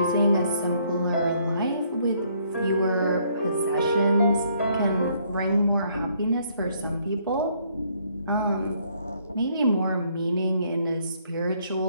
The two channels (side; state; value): both; inverted; correlation -0.67